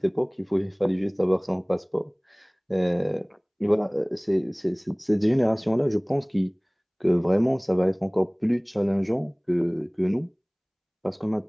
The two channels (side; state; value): both; identical; correlation 1.00